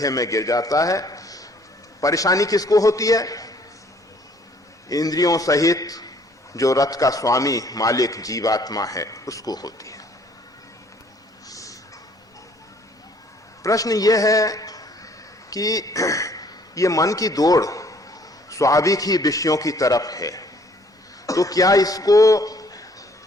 में गिर जाता है। परेशानी किसको होती है? इंद्रियों सहित जो रथ का स्वामी मालिक जीवात्मा है उसको होती है। प्रश्न यह है कि ये मन की दौड़ स्वाभाविक ही विषयों की तरफ है, तो क्या इसको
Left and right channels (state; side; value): normal; both; correlation 0.61